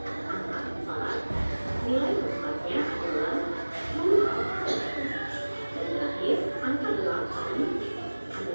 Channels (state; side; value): inverted; both; correlation -1.00